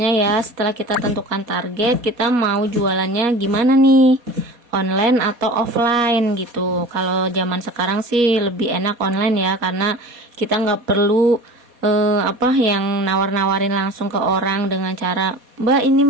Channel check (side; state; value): left; late; 4.2 ms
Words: ya, setelah kita tentukan target, kita mau jualannya gimana nih, online atau offline gitu. Kalau zaman sekarang sih lebih enak online ya, karena kita nggak perlu yang nawar-nawarin langsung ke orang dengan cara, mbak ini